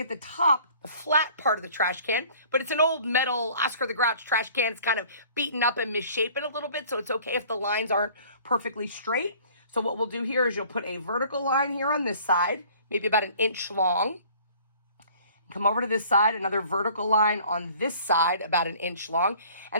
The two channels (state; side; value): inverted; both; correlation -0.52